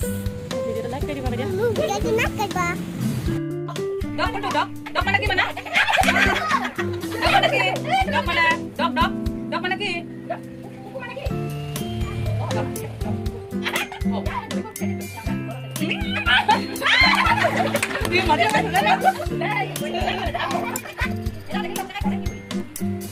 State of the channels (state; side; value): identical; both; correlation 1.00